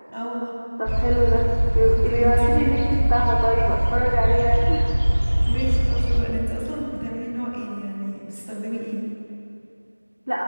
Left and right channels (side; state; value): both; inverted; correlation -1.00